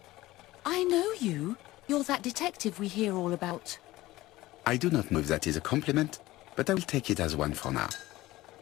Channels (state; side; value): quieter; right; 17.7 dB